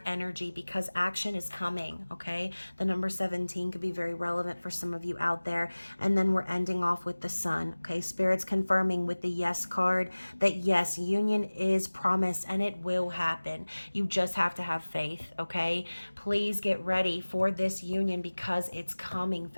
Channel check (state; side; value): inverted; both; correlation -1.00